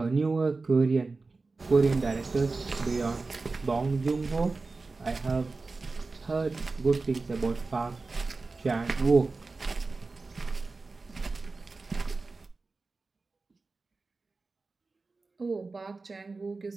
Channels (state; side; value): quieter; left; 3.8 dB